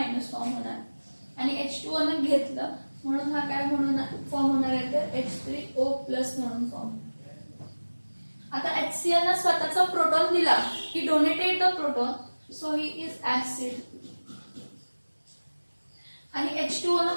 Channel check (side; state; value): both; inverted; correlation -1.00